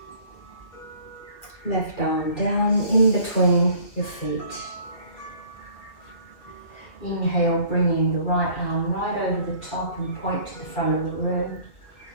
Left arm down in between your feet. Inhale, bringing the right arm right over the top and point to the front of the room.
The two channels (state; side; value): late; right; 2.4 ms